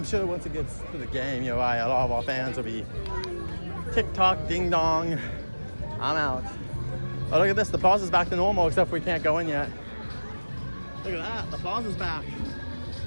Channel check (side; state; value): both; inverted; correlation -1.00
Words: sure once it gets to the game, you're right, a lot of our fans will be TikTok, ding dong. I'm out. Oh, look at this. The Plaza's back to normal, except we can't go in yet. Look at that. The Plaza's back.